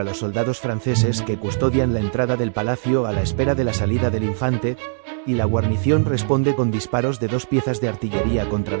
los soldados franceses que custodian la entrada del palacio a la espera de la salida del infante, y la guarnición responde con disparos de 2 piezas de artillería contra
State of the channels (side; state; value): left; silent; digital silence